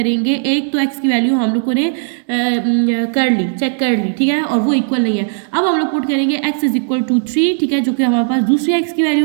एक तो एक्स की वैल्यू हम लोगों ने चेक कर ली, ठीक है, और वो इक्वल नहीं है। अब हम लोग पुट करेंगे x इज इक्वल टू 3, ठीक है, जो कि हमारे पास दूसरी x की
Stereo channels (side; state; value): left; silent; digital silence